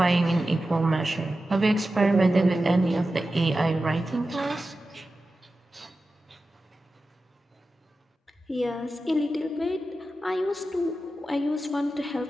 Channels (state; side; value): normal; both; correlation 0.93